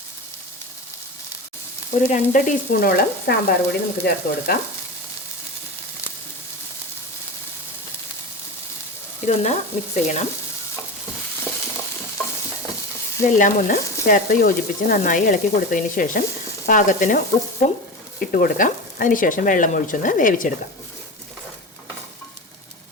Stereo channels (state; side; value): normal; both; correlation 0.26